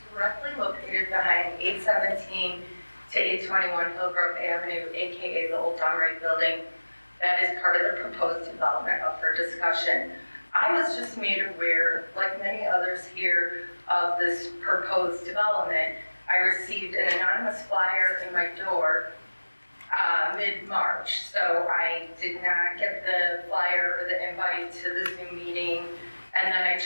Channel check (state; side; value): inverted; both; correlation -1.00